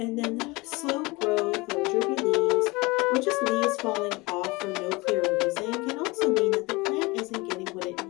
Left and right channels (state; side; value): quieter; right; 23.9 dB